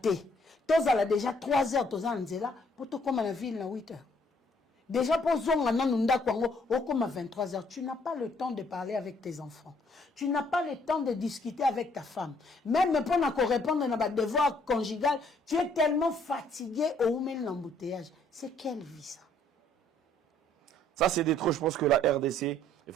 Tozala déjà 3 heures tozala nzela pour to comme la ville na 8 heures. Déjà, pour à 23 heures, tu n'as pas le temps de parler avec tes enfants. Tu n'as pas le temps de discuter avec ta femme. Même pour répondre à nos devoirs conjugaux, tu es tellement fatigué au moment de l'embouteillage. C'est quelle vie ça? Ça, c'est des trop. Je pense que la RDC, il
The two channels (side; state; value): both; normal; correlation 0.65